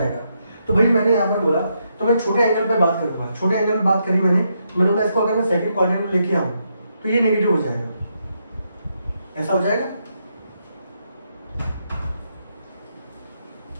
तो भाई मैंने यहाँ पर बोला तो मैं छोटे एंगल पे बात करूंगा, छोटे एंगल पे बात करी मैंने बोला इसको अगर मैं सेकंड क्वाड्रेंट में लेके आऊँ तो ये नेगेटिव हो जाएगा, ऐसा हो जाएगा।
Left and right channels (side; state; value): both; inverted; correlation -0.80